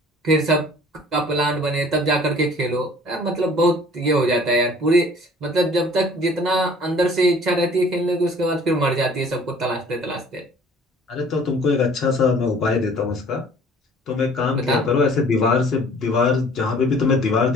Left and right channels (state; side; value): normal; both; correlation 0.52